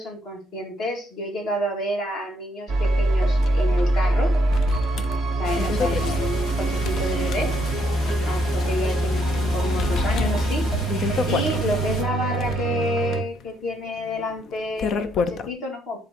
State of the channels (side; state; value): both; normal; correlation 0.73